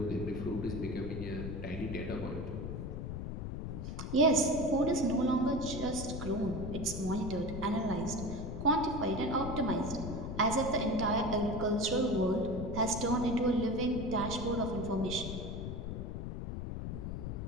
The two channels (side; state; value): left; noise; rumble, 5 dB below the sound